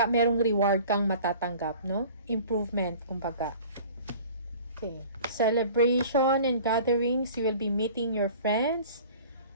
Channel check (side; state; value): both; inverted; correlation -0.45